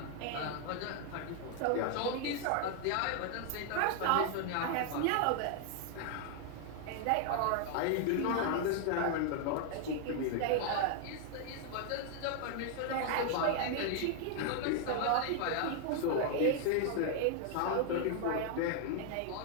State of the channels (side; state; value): both; different; correlation 0.00